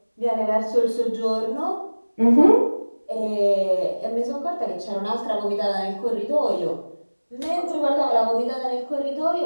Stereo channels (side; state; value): both; inverted; correlation -1.00